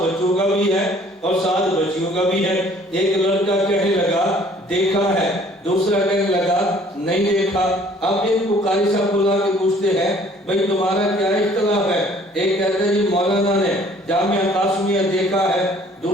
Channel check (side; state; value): both; normal; correlation 0.56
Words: کا بھی ہے اور ساتھ بچیوں کا بھی ہے۔ ایک لڑکا کہنے لگا دیکھا ہے، دوسرا کہنے لگا نہیں دیکھا۔ اب ان کو قاری صاحب بلا کے پوچھتے ہیں بھئی تمہارا کیا اختلاف ہے؟ ایک کہتا ہے جی مولانا نے جامعہ قاسمیہ دیکھا ہے،